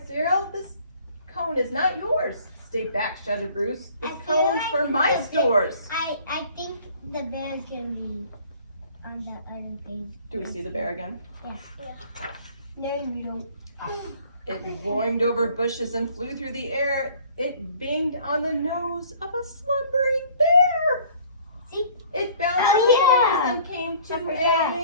Cyril. This cone is not yours. Stay back, shouted Bruce. This cone's for my stores. I think the bear's gonna be on the other page. Do we see the bear again? Yes. No, you don't. It boinged over bushes and flew through the air. It binged on the nose of a slumbering bear. See? It bounced Oh, yeah. and came to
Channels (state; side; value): inverted; both; correlation -0.53